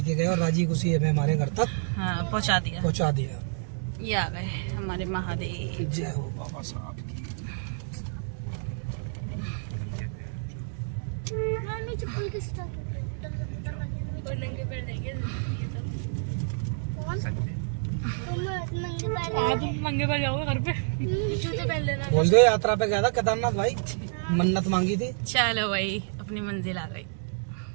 गए और राजी खुशी हमें हमारे घर तक हाँ पहुंचा दिया। पहुँचा दिया। ये आ गए हमारे महादेव। जय हो बाबा साहब की। चप्पल किस तरह नंगे पैर देंगे कौन संजय तुम नंगे पैर आप नंगे पैर जाओगे घर पे, जूते पहन लेना। बोल दो यात्रा पे गया था केदारनाथ भाई, मन्नत मांगी थी। चलो भाई अपनी मंजिल आ गई,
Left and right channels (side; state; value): left; silent; digital silence